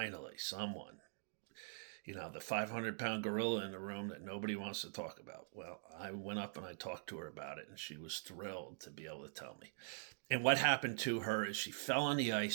someone. You know, the 500-pound gorilla in the room that nobody wants to talk about." Well, I went up and I talked to her about it, and she was thrilled to be able to tell me. And what happened to her is she fell on the ice.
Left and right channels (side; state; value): left; silent; digital silence